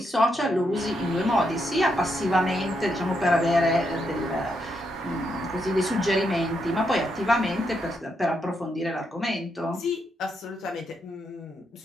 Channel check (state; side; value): normal; both; correlation 0.80